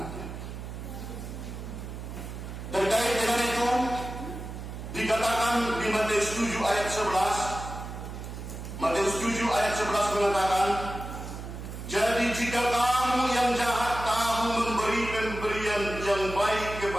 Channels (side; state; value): right; noise; hum, 9 dB below the sound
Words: Terkait dengan itu, dikatakan di Matius 7 ayat 11, Matius 7 ayat 11 mengatakan, "Jadi jika kamu yang jahat tahu memberi pemberian yang baik